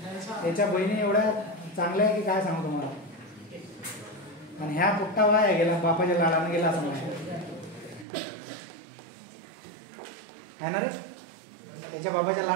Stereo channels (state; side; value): drops out; left; at 8.1 s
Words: बहिणी एवढ्या चांगल्या आहे की काय सांगू तुम्हाला. आणि ह्या पुट्टा वाया गेला, बापाच्या लाडानं गेला असं म्हणा आहे ना रे. त्याच्या बाबाच्या